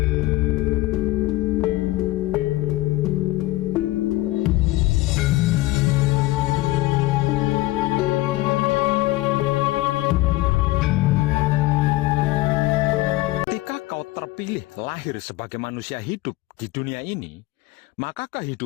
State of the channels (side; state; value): right; quieter; 18.6 dB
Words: kau terpilih lahir sebagai manusia hidup di dunia ini, maka